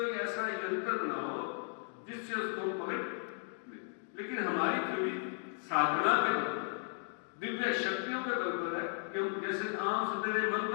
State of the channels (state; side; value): silent; right; 54 dB below the other